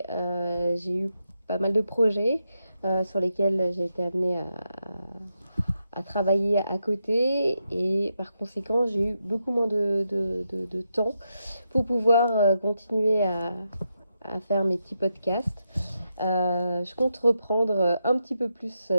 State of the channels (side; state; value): both; inverted; correlation -0.85